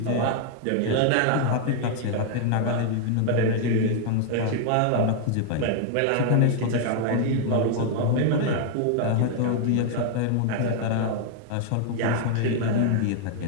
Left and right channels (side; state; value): both; different; correlation 0.00